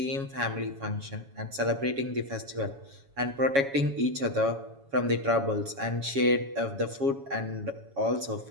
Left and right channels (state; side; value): late; left; 7.2 ms